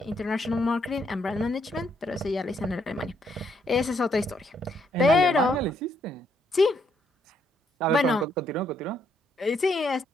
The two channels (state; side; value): normal; both; correlation 0.73